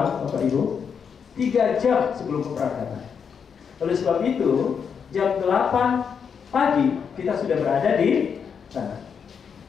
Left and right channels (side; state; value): right; quieter; 6.8 dB